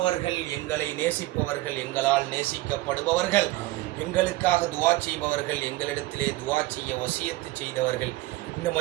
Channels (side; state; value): left; quieter; 18.3 dB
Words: எங்களை நேசிப்பவர்கள், எங்களால் நேசிக்கப்படுபவர்கள், எங்களுக்காக துவா செய்பவர்கள், எங்களிடத்திலே துவா செய்ய வசியத்து செய்தவர்கள், இந்த